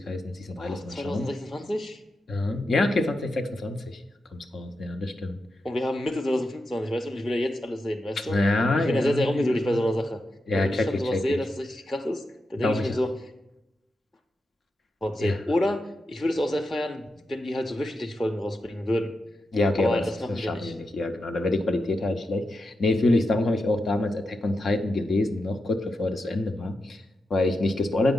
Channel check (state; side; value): normal; both; correlation 0.88